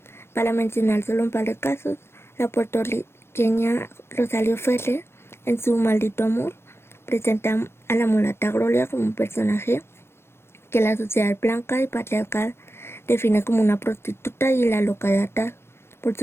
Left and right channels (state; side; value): late; right; 0.12 ms